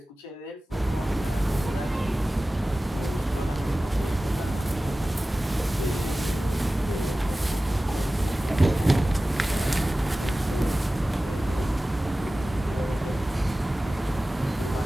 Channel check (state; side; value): normal; both; correlation 0.96